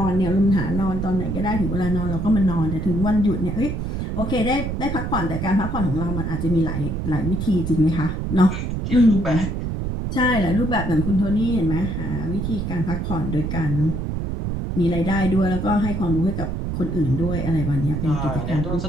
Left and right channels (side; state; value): right; noise; rumble, 3 dB below the sound